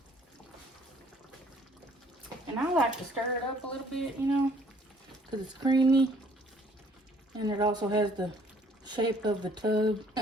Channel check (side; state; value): both; normal; correlation 0.60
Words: And I like to stir it up a little bit, you know, because it's creamy. And it also has the shape of the tub.